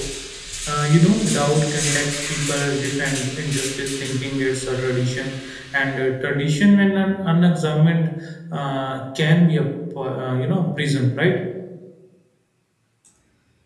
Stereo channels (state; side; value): identical; both; correlation 1.00